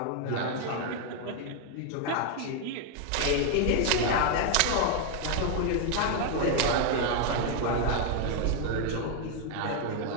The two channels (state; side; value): different; both; correlation 0.00